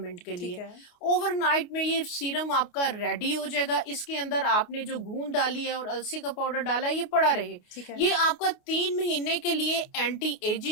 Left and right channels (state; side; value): late; right; 28 ms